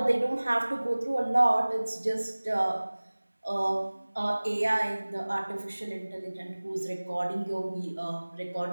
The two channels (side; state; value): both; inverted; correlation -1.00